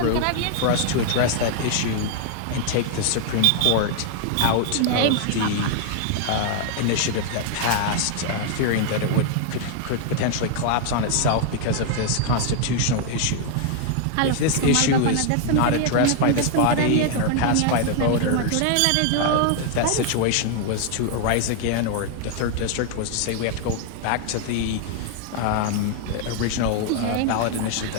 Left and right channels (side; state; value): both; different; correlation 0.00